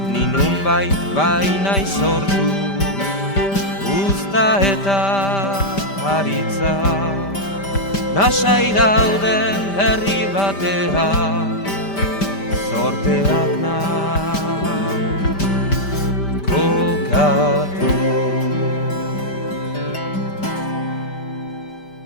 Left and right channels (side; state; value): right; late; 5.1 ms